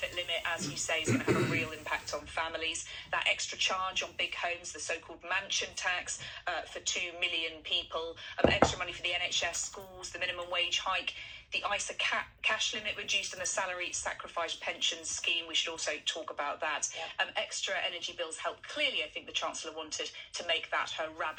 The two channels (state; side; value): identical; both; correlation 1.00